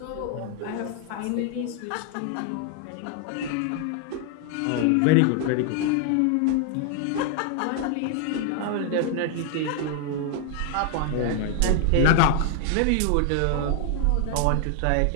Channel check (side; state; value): both; different; correlation 0.00